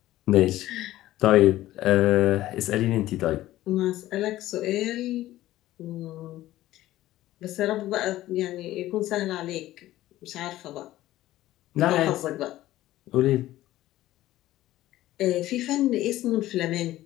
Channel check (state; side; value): quieter; right; 15.1 dB